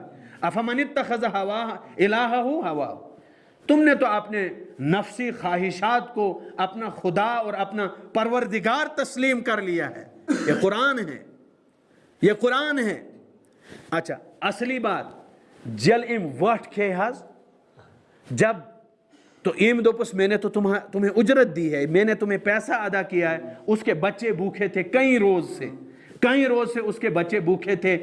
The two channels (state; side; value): identical; both; correlation 1.00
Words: افمن اتخذ الہہ ہواہ، تم نے تو اپنے نفسی خواہشات کو اپنا خدا اور اپنا پروردگار تسلیم کر لیا ہے۔ یہ قرآن ہے، یہ قرآن ہے۔ اچھا اصلی بات جل ام وٹ کھے حض، جب تو ایم دوپس میں نے تو تمہیں اجرت دی ہے، میں نے تمہیں پیسہ ادا کیا ہے، اس کے بچے بھوکے تھے کئی روز سے اس کے بچے بھوکے تھے،